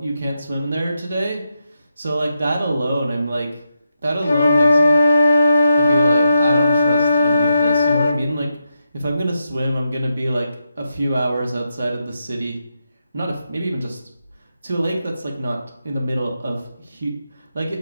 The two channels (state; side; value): inverted; both; correlation -0.85